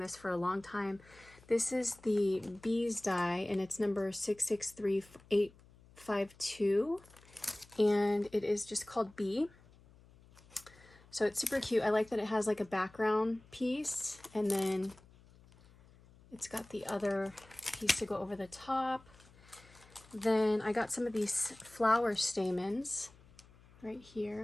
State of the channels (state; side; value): noise; left; hum, 25 dB below the sound